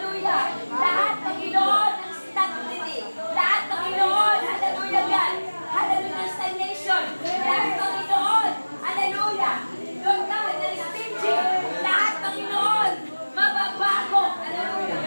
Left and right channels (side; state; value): both; inverted; correlation -1.00